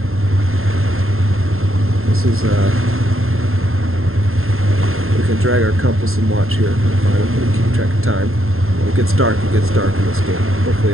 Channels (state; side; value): late; left; 0.61 ms